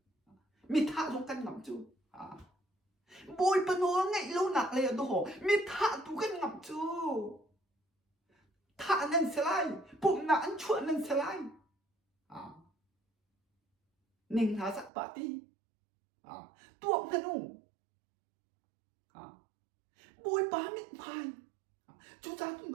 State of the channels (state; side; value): drops out; left; at 14.9 s